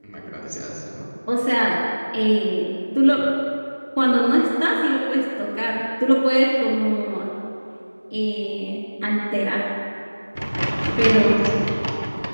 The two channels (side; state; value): both; inverted; correlation -1.00